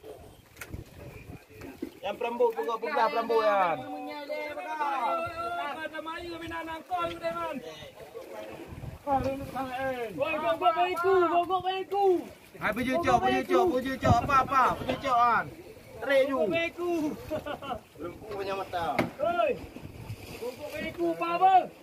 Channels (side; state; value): both; identical; correlation 1.00